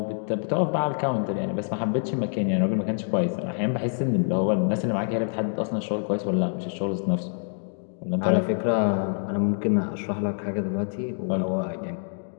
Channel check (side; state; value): right; silent; digital silence